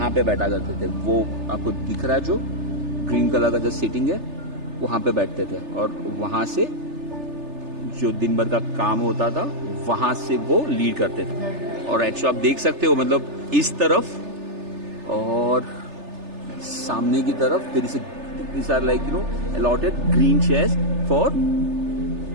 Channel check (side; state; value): left; late; 3.3 ms